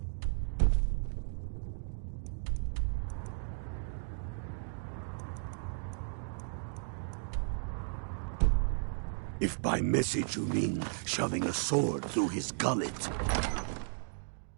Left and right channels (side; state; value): left; silent; digital silence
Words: If by message you mean shoving a sword through his gullet.